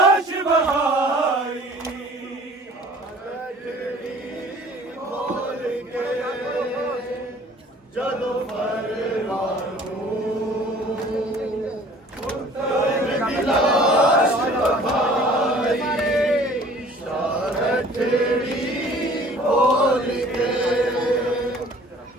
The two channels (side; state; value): both; normal; correlation 0.51